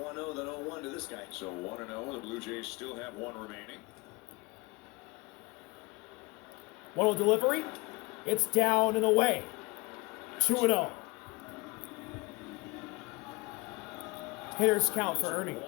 than 0-1 to this guy. So 1-0. The Blue Jays still have 1 remaining. 1-0 delivery. It's down and away. 2-0. Hitters count for Ernie.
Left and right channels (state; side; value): quieter; right; 25.2 dB